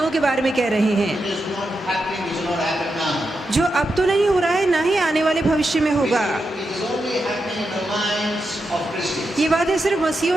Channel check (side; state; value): both; normal; correlation 0.87